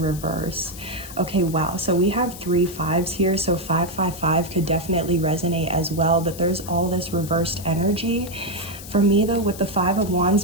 Okay, wow, so we have 3 5s here, so 555 could definitely resonate as well, but there's all this reversed energy. For me though, with the Five of Wands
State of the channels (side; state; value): left; noise; hiss, 14 dB below the sound